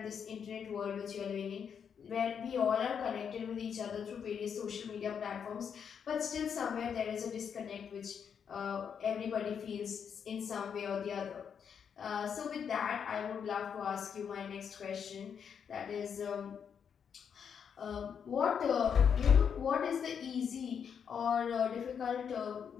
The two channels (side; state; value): right; quieter; 7.3 dB